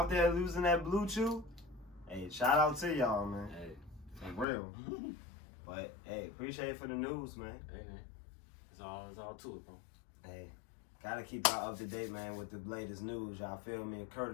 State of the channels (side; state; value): right; drops out; at 4.5 s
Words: there losing that Blue Chew, hey, shout out to y'all, man. Hey, for real. But hey, appreciate it for the news, man. Hey, man. It's all to it, bro. Hey, gotta keep y'all up to date, man, with the latest news. Y'all feel me?